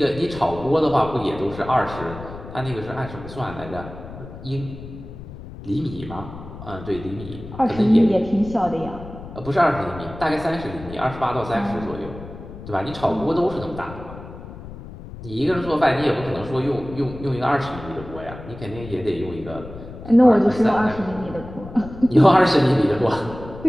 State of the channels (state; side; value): noise; left; rumble, 13 dB below the sound